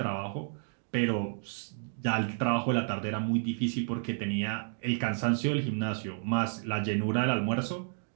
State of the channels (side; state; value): left; silent; digital silence